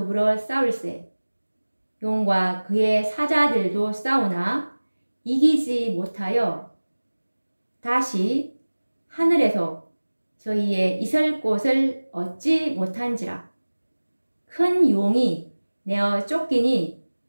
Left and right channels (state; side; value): inverted; both; correlation -1.00